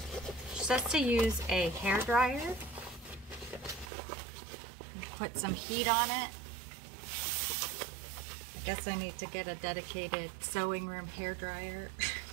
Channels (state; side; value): drops out; left; at 3.9 s